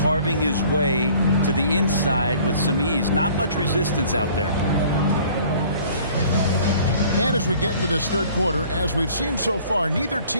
his way to the inside with some ease. Not much resistance out there. And as we get into this third quarter, as we've seen so far, neither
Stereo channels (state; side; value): inverted; both; correlation -0.53